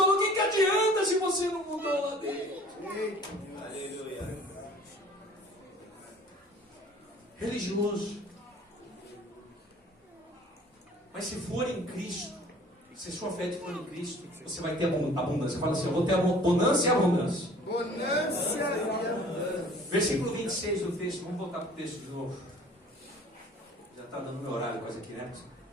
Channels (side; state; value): both; normal; correlation 0.50